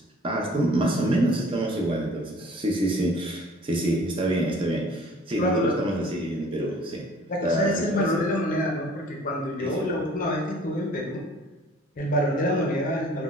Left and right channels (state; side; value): normal; both; correlation 0.52